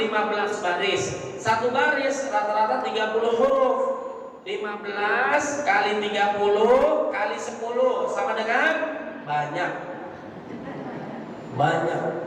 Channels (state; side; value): identical; both; correlation 1.00